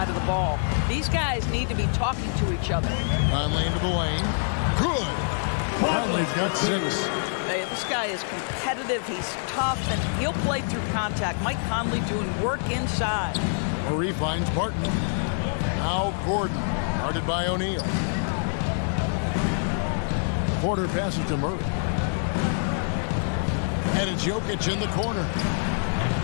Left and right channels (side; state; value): right; silent; digital silence